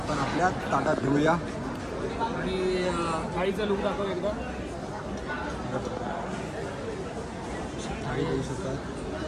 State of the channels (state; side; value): identical; both; correlation 1.00